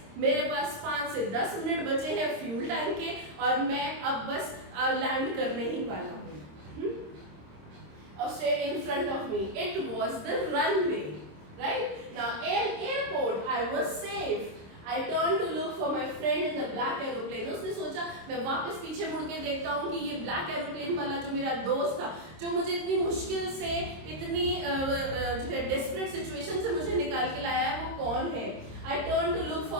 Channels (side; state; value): left; late; 26 ms